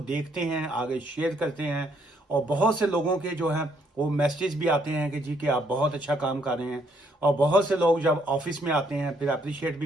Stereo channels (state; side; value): normal; both; correlation 0.70